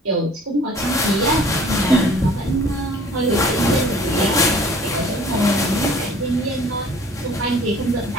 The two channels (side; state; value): both; normal; correlation 0.51